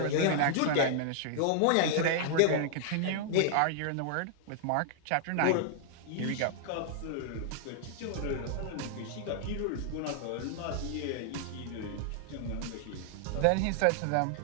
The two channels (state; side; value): different; both; correlation -0.01